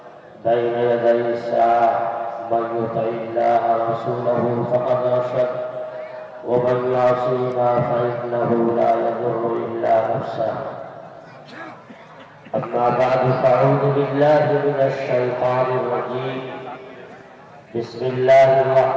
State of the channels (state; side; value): identical; both; correlation 1.00